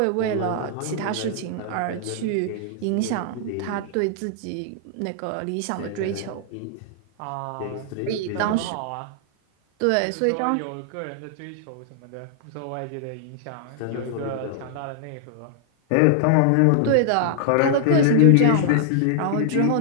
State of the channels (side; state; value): both; different; correlation 0.00